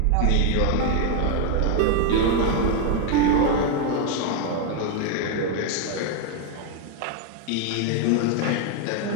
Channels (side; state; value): both; different; correlation 0.01